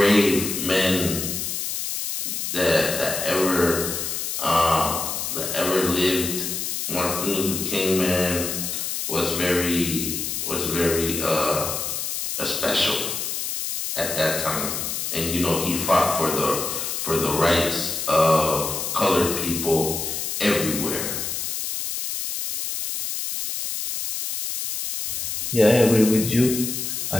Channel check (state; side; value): noise; left; hiss, 3 dB below the sound